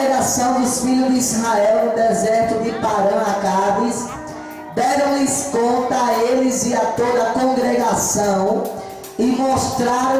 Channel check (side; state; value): both; identical; correlation 1.00